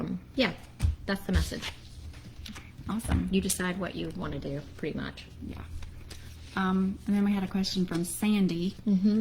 that's the message. Awesome. You decide what you want to do, pretty much. Yeah. And then we had a question from Sandy.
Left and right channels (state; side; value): identical; both; correlation 1.00